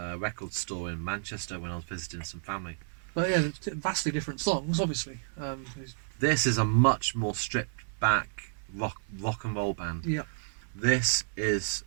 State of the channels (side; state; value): left; silent; 57 dB below the other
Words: record store in Manchester when I was visiting some family. But yeah, vastly different songs, obviously. This is a much more stripped back rock and roll band. Yeah. This is